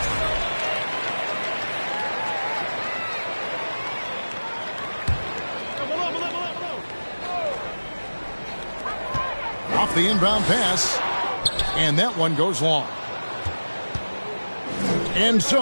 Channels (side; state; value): both; inverted; correlation -1.00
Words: Off the inbound pass. And that one goes long. And